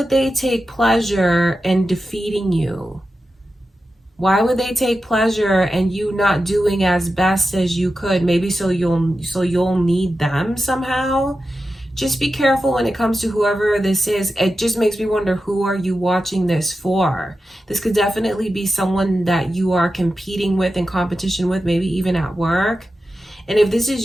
they take pleasure in defeating you? Why would they take pleasure in you not doing as best as you could? Maybe so you'll need them somehow. Just be careful when it comes to whoever this is. It just makes me wonder, who are you watching this for? This could definitely be someone that you are competing with, in competition with, maybe even at work. And if this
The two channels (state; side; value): normal; both; correlation 0.91